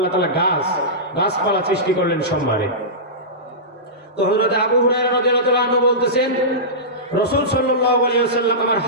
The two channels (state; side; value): normal; both; correlation -0.17